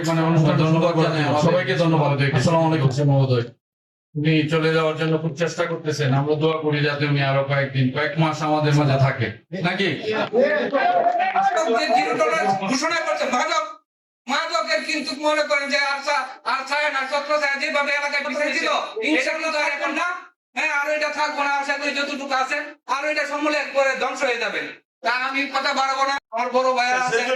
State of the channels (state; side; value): identical; both; correlation 1.00